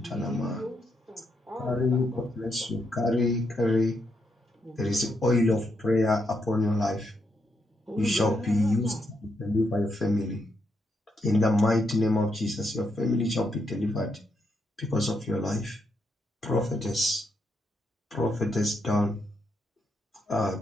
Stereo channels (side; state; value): both; normal; correlation 0.80